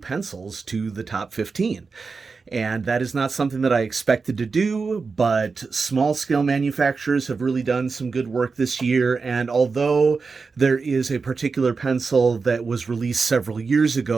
to the top 15. And that is not something that I expected to do, but small scale manufacturers have really done some good work this year. And although there is a particular pencil that was released several years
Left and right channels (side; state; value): left; quieter; 4.7 dB